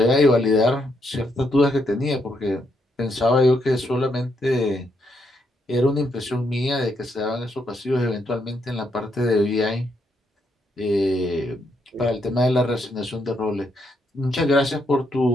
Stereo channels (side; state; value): both; normal; correlation 0.77